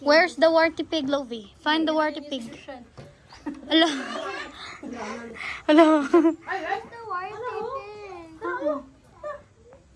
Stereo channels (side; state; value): both; identical; correlation 1.00